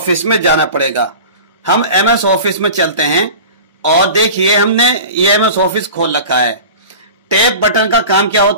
में जाना पड़ेगा। हम MS ऑफिस में चलते हैं और देखिए हमने ये MS ऑफिस खोल रखा है। टेप बटन का काम क्या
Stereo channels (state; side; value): inverted; both; correlation -0.36